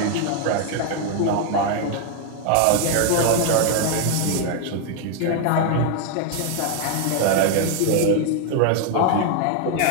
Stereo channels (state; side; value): different; both; correlation 0.00